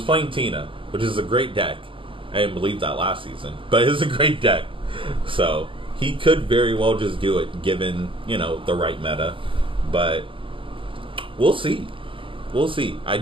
playing Tina, which is a great deck. I didn't believe that last season, but it's a great deck. So he could very well just do it, given the right meta. But we'll see. I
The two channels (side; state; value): left; late; 0.25 ms